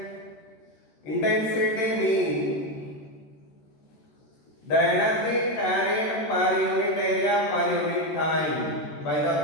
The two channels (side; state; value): right; late; 13 ms